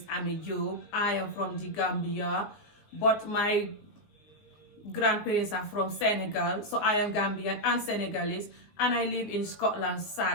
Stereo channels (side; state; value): right; late; 19 ms